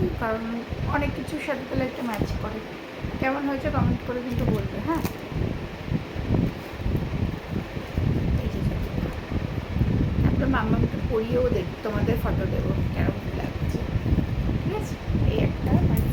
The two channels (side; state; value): both; identical; correlation 1.00